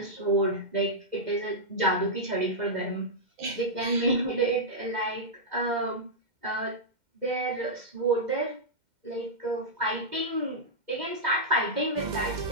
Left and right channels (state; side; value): late; left; 2.1 ms